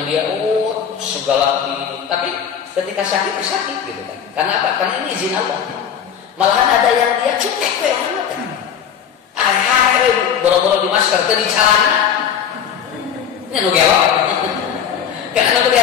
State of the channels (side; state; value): right; quieter; 8.3 dB